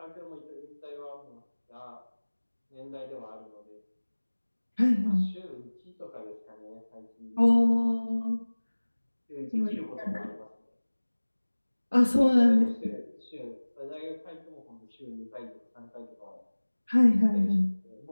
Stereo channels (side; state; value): both; inverted; correlation -1.00